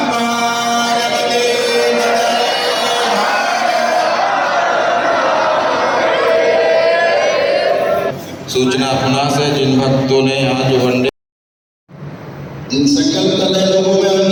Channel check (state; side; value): identical; both; correlation 1.00